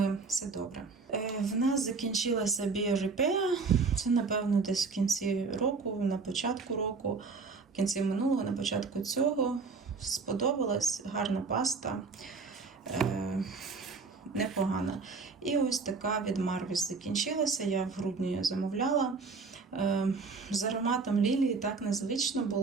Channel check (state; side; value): quieter; left; 4.5 dB